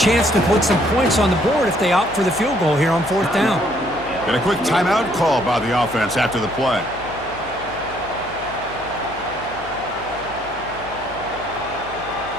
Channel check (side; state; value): left; noise; hum, 18 dB below the sound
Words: to put some points on the board if they opt for the field goal here on fourth down. And a quick timeout call by the offense after the play.